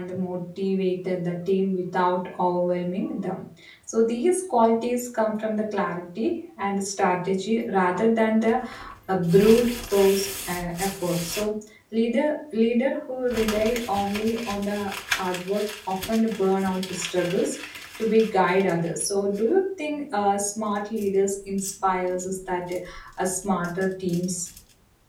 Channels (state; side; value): identical; both; correlation 1.00